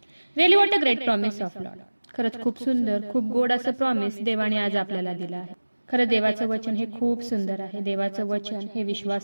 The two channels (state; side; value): inverted; both; correlation -1.00